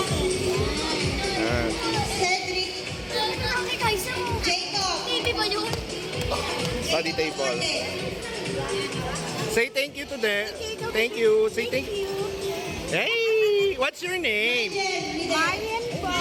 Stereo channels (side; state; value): both; identical; correlation 1.00